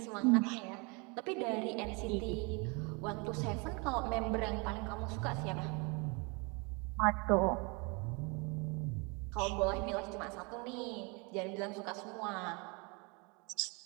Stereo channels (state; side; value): quieter; left; 30.6 dB